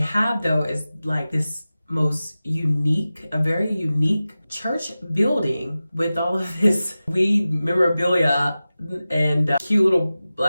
though is like this most unique, a very unique church building with all of this weed memorabilia and cute little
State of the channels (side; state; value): both; inverted; correlation -0.95